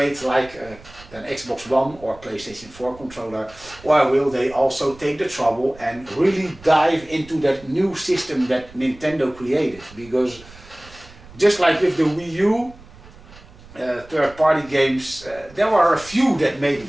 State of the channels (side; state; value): right; noise; rumble, 21 dB below the sound